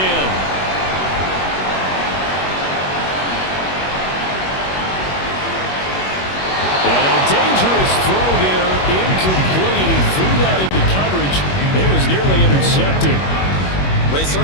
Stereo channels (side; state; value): right; late; 21 ms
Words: And a dangerous throw there, incomplete. He threw that into coverage. It was nearly intercepted. Well, he